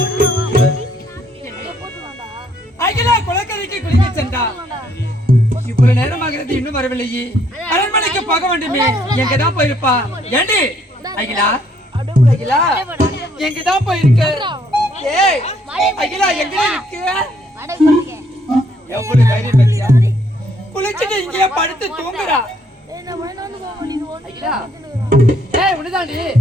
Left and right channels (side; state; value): both; normal; correlation 0.67